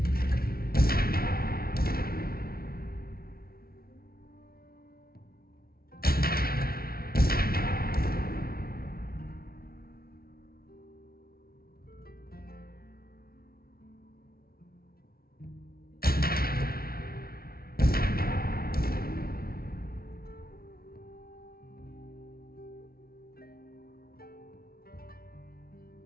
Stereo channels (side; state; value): right; late; 0.44 ms